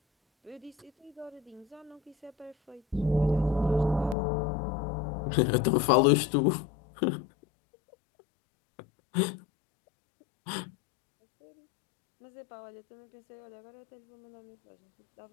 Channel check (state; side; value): drops out; right; at 4.2 s